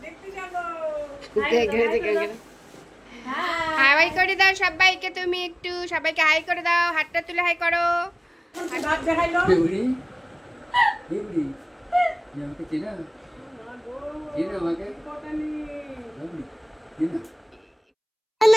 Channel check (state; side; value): identical; both; correlation 1.00